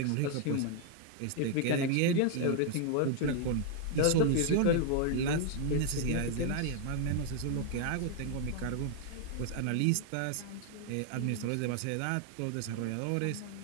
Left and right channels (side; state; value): both; different; correlation 0.00